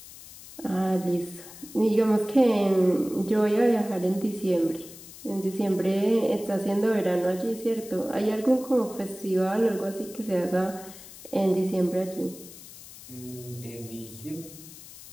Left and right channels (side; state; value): left; noise; hiss, 17 dB below the sound